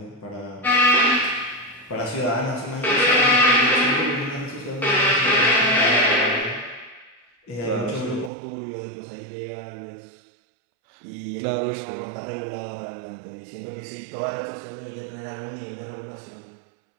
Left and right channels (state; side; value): drops out; left; at 8.3 s